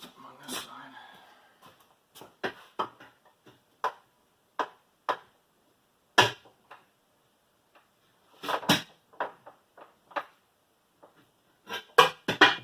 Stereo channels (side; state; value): both; identical; correlation 1.00